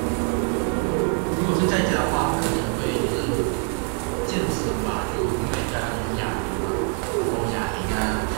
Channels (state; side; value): quieter; left; 33.8 dB